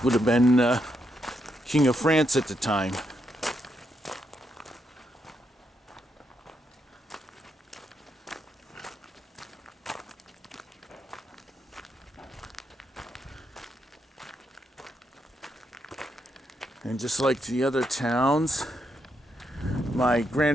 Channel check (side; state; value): both; normal; correlation 0.80